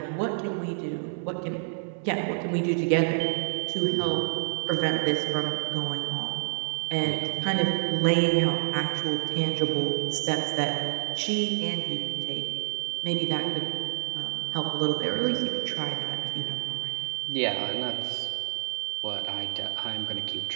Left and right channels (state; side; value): silent; left; digital silence